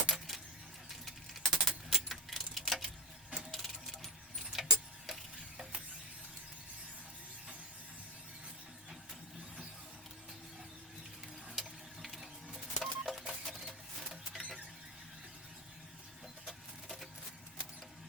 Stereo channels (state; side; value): normal; both; correlation 0.19